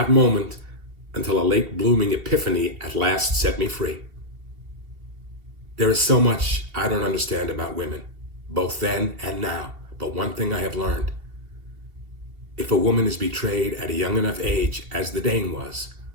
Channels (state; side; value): late; left; 2.7 ms